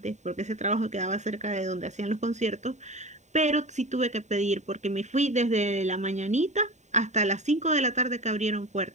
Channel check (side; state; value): left; late; 0.34 ms